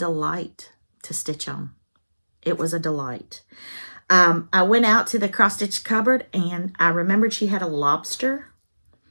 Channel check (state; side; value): inverted; both; correlation -1.00